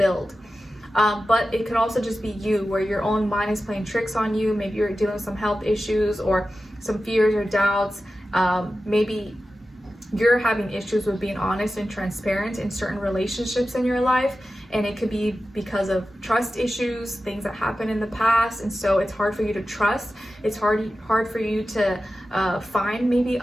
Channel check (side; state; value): both; normal; correlation 0.93